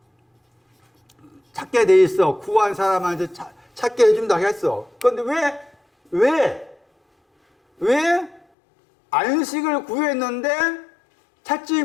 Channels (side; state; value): right; drops out; at 8.4 s